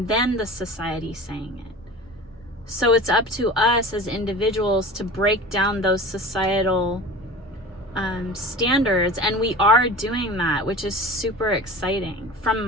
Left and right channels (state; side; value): normal; both; correlation 0.37